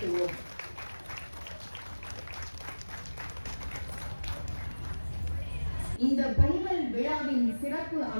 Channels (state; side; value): inverted; both; correlation -1.00